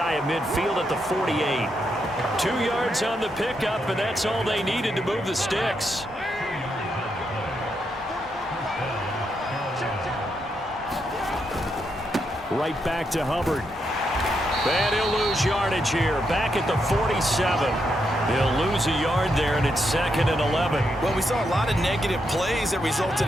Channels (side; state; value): both; normal; correlation 0.81